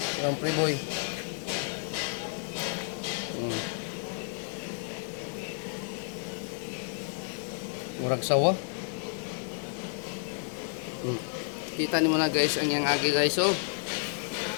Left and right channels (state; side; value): silent; right; 57 dB below the other